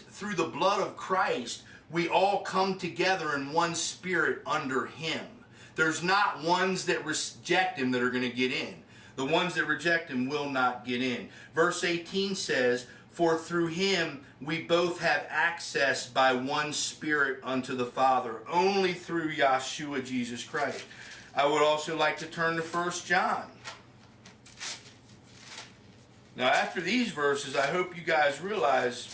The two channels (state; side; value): identical; both; correlation 1.00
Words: through the blood of Christ, we all come together in one spirit under him. There's not ones that reject him that are going to get in. The ones that reject him will not get in. Verse 18 says, for through him we both have access by one spirit unto the Father, only through Yahshua Jesus Christ. I would also like to turn to 1 John. Now, after these verses, I hope you guys